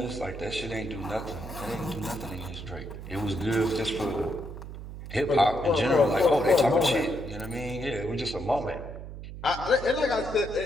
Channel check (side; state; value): right; noise; hum, 11 dB below the sound